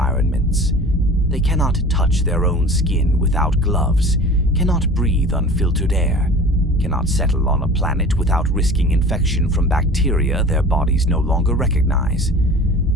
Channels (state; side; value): normal; both; correlation 0.41